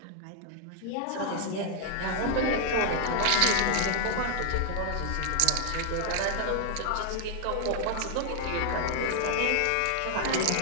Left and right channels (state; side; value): different; both; correlation 0.00